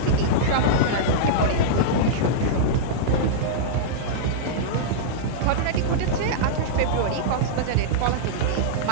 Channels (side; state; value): both; different; correlation -0.03